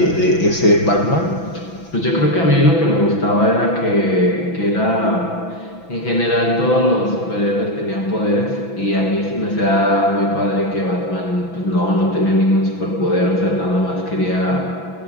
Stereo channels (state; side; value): late; right; 6.0 ms